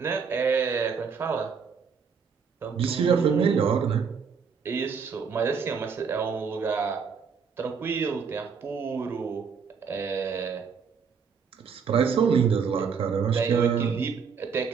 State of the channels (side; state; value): left; quieter; 6.1 dB